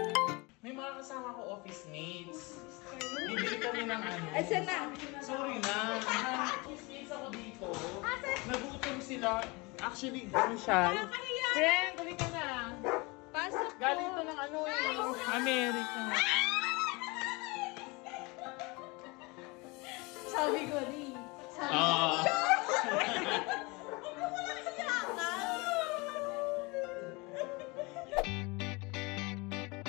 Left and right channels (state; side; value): quieter; right; 26.3 dB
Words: May mga kasama ko office mates. Bibili kami ng ano. Asan na? Sorry na. Office mates ako dito. Nagutom sila. Actually, ano siya? Friend, tuloy ka na. Pasok po. Galing to ng ano eh. America. Sabi ko, di.